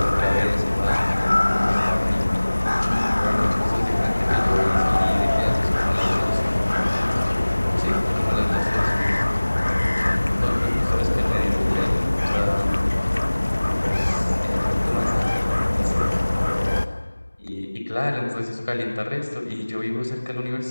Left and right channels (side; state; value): both; inverted; correlation -1.00